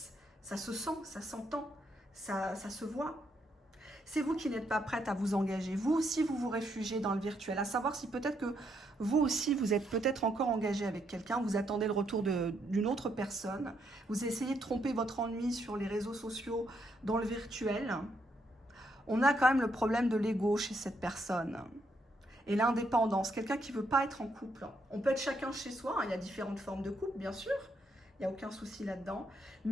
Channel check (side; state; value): both; normal; correlation 0.76